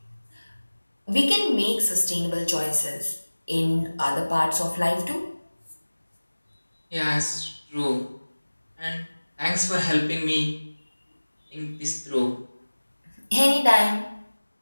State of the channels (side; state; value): both; inverted; correlation -1.00